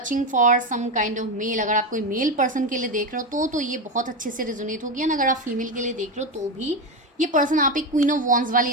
for some kind of mail, अगर आप कोई मेल पर्सन के लिए देख रहे हो तो ये बहुत अच्छे से रिजोनेट होगी। एंड अगर आप फीमेल के लिए देख रहे हो तो भी ये पर्सन आप एक क्वीन ऑफ वॉन्ड्स वाली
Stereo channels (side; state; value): both; normal; correlation 0.14